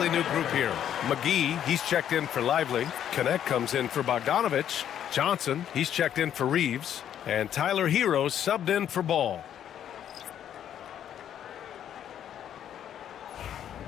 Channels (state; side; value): quieter; right; 10.0 dB